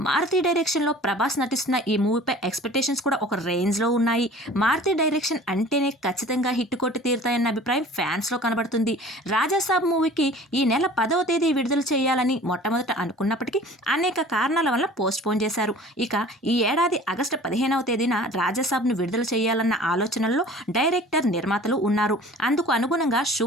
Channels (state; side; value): normal; both; correlation 0.45